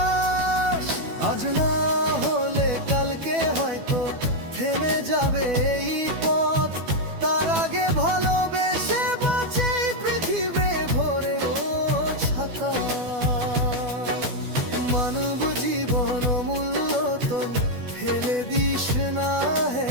আজ না হলে কালকে হয়তো থেমে যাবে এই পথ। তার আগে ভালোবেসে বাঁচে পৃথিবী ভরে ও ছাতা। মানব জীবন অমূল্য তো ফেলে দিস না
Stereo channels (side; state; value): left; late; 12 ms